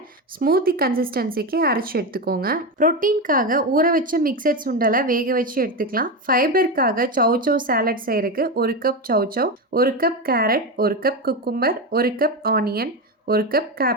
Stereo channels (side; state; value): both; normal; correlation 0.15